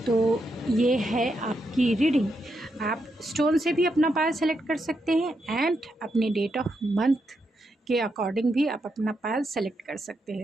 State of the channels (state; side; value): normal; both; correlation 0.82